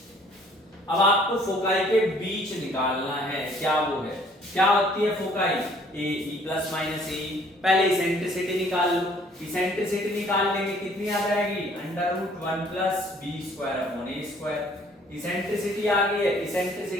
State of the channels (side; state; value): both; normal; correlation 0.58